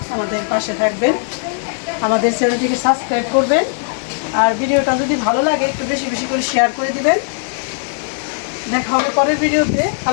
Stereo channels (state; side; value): silent; right; digital silence